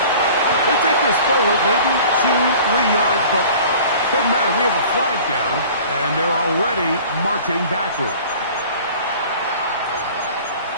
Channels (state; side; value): inverted; both; correlation -0.45